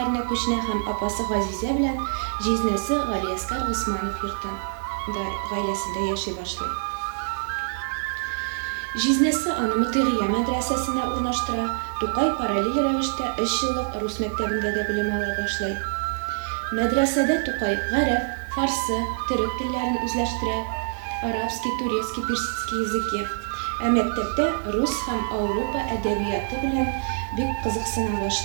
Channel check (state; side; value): silent; left; 58 dB below the other